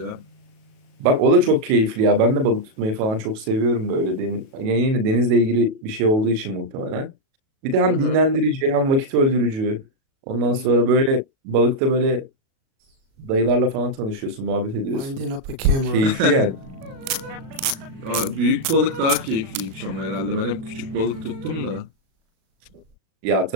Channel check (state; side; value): late; left; 37 ms